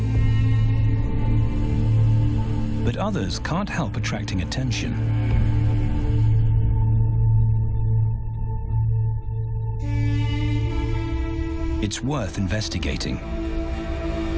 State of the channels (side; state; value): both; identical; correlation 1.00